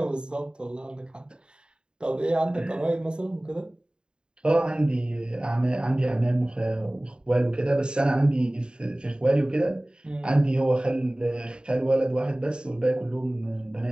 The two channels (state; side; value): late; left; 0.049 ms